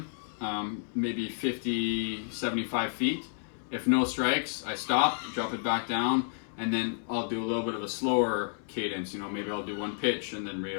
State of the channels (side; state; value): right; silent; 57 dB below the other